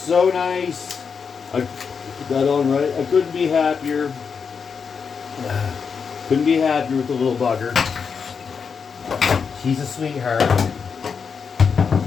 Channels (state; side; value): quieter; right; 6.0 dB